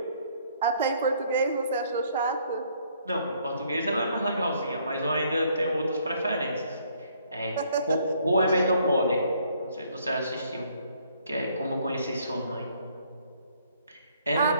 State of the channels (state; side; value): inverted; both; correlation -0.65